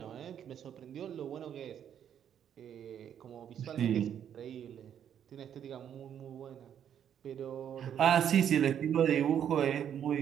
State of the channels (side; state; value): left; quieter; 9.2 dB